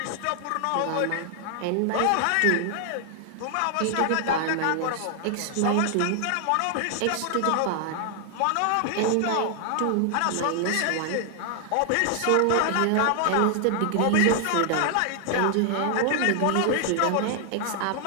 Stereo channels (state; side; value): different; both; correlation 0.00